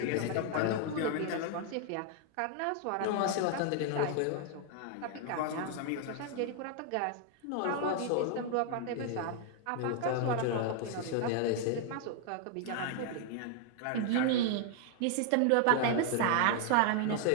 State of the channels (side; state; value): both; different; correlation 0.00